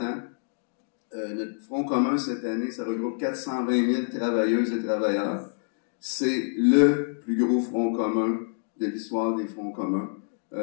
ans. Notre Front commun cette année, ça regroupe 420 000 travailleuses et travailleurs. C'est le plus gros Front commun de l'histoire des Fronts communs.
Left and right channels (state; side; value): silent; right; digital silence